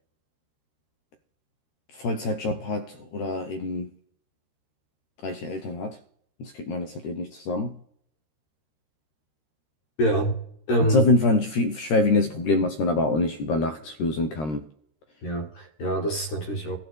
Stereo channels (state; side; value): late; right; 13 ms